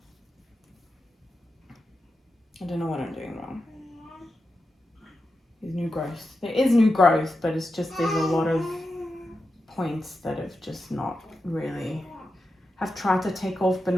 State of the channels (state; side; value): normal; both; correlation 0.90